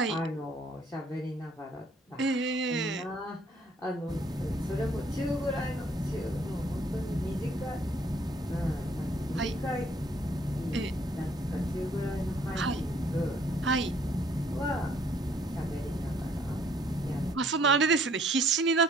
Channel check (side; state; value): both; normal; correlation 0.62